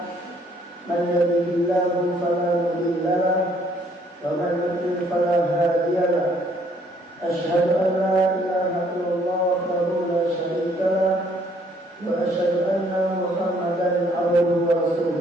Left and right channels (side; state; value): both; normal; correlation 0.64